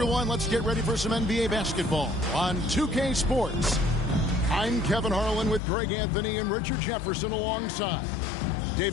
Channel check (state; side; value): drops out; right; at 5.6 s